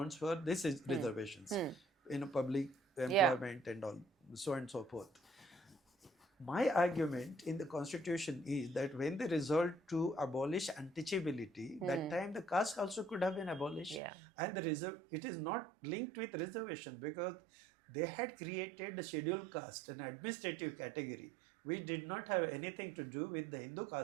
for this is reservations in a public employment and all, so on and so forth. My argument in the constitution is that when they resolved to abolish untouchability, that time the caste also could have been abolished. Yeah. And it is not linked with reservation because they had created the scheduled caste, an administrative category, which did not have anything to do with the Hindu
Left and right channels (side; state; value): left; drops out; at 14.0 s